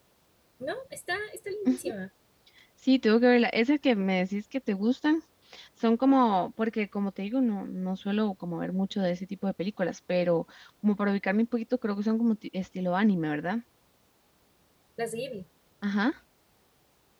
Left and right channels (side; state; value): both; identical; correlation 1.00